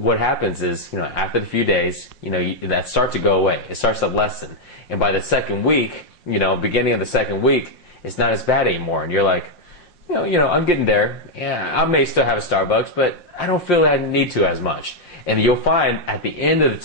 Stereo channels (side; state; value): right; late; 5.6 ms